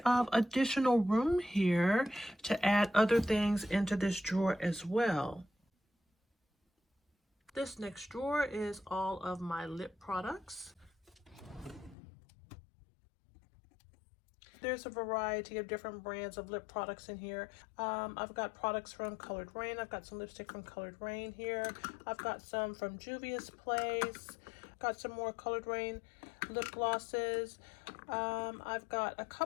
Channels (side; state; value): right; drops out; at 12.0 s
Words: of additional room here to add other things into this drawer as well. This next drawer is all of my lip products. There's a variety of different brands of lip products in here. I've got products from Colored Rain. I've got some lipstick from Colored Rain here. I've got some from Juvia's Place. Got some more Colored Rain lip glosses. I've got a